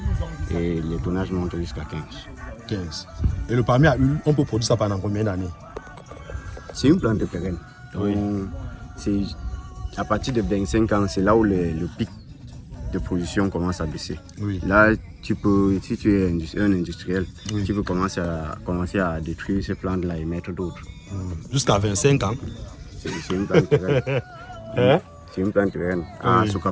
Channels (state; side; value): identical; both; correlation 1.00